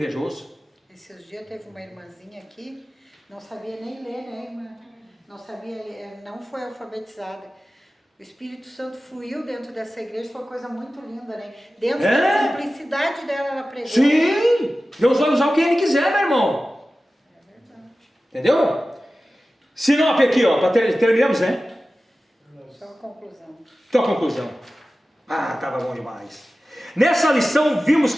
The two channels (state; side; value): normal; both; correlation 0.95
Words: Esses dias teve uma irmãzinha aqui, não sabia nem ler, né, irmã? Não sabia ler, não foi alfabetizada. O Espírito Santo fluiu dentro dessa igreja, foi uma coisa muito linda, né? Dentro da simplicidade dela, ela pregou. Sim! Deus vai usar o que Ele quiser, meu irmão. É verdade. Entendeu? Se não, aqui, ó, terminamos, né? Só a conclusão. Então a conclusão. Ah, estava bom demais. Nessa lição vimos